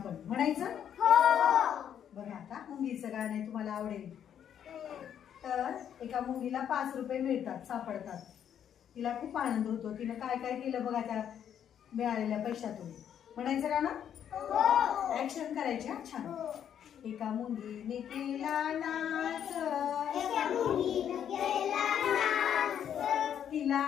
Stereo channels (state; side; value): quieter; right; 9.2 dB